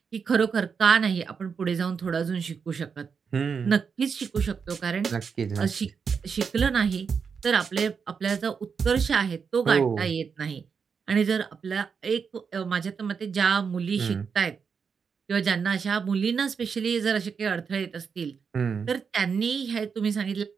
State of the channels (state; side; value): quieter; left; 6.0 dB